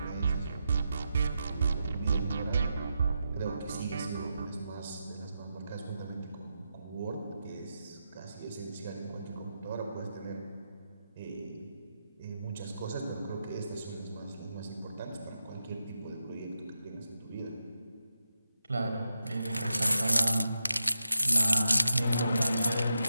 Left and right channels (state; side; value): inverted; both; correlation -0.88